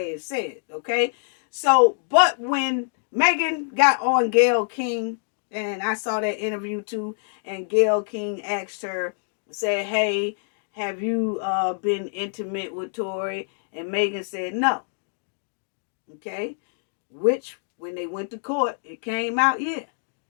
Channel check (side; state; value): right; silent; digital silence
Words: it said, okay? So, but when Megan got on Gayle King, and I saw that interview too, and Gayle King asked her, said, hey, have you been intimate with Tory? And Megan said no. Okay? Which, when they went to court, it came out, yeah.